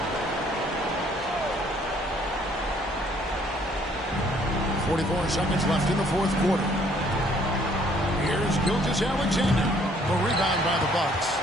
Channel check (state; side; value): normal; both; correlation 0.62